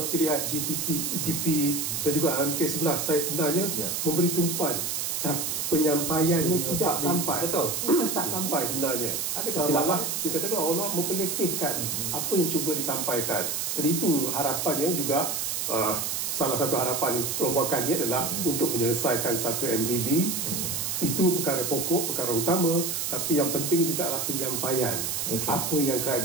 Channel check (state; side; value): noise; right; hiss, 1 dB below the sound